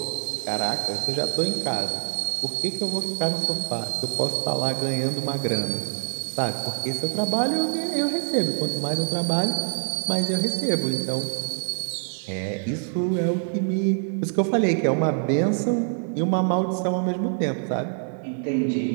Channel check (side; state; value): left; silent; digital silence